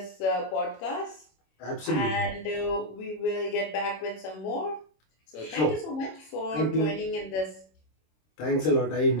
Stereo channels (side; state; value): right; late; 26 ms